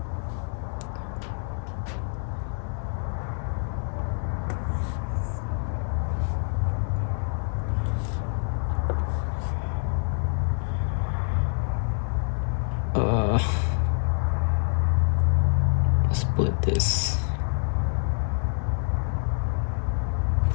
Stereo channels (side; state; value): right; silent; digital silence